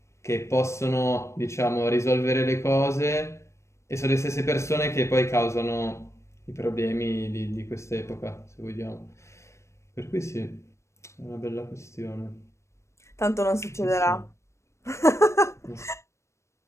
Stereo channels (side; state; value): right; late; 0.14 ms